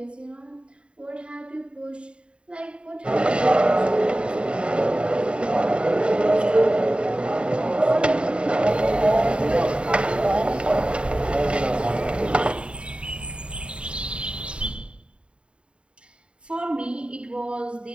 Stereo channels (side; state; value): left; late; 0.055 ms